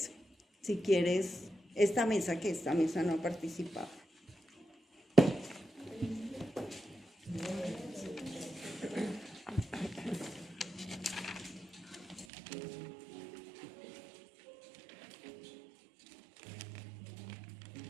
Si quieres, esta mesa no ha participado.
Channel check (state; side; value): drops out; left; at 12.2 s